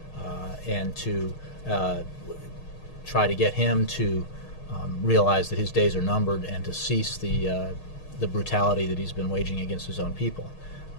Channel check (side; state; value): right; late; 6.4 ms